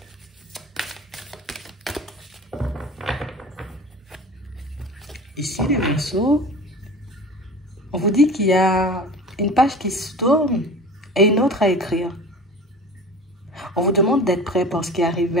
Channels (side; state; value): both; normal; correlation 0.38